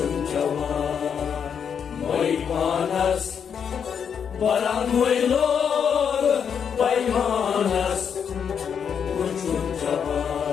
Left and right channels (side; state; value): right; quieter; 7.3 dB